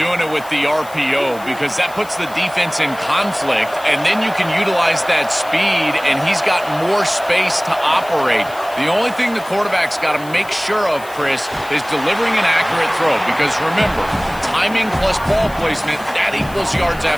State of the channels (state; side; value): noise; left; hiss, 20 dB below the sound